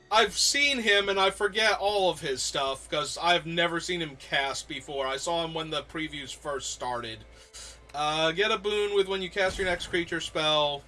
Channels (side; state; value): both; identical; correlation 1.00